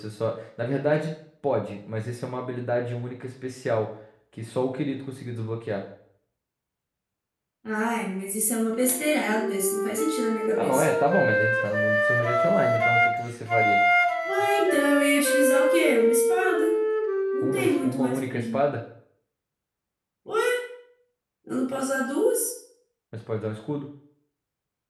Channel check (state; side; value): identical; both; correlation 1.00